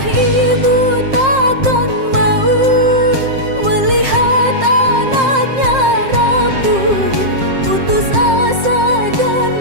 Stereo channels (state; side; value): late; left; 7.6 ms